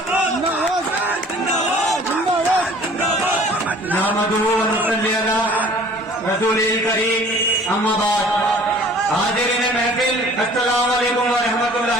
हाजिरीन महफिल अस्सलाम वालेकुम व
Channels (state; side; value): normal; both; correlation 0.50